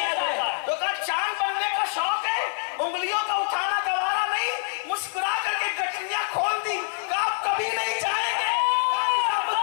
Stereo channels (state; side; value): silent; right; 59 dB below the other